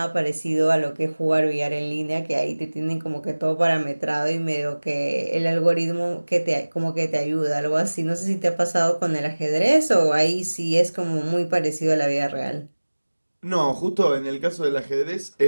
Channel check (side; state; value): both; inverted; correlation -1.00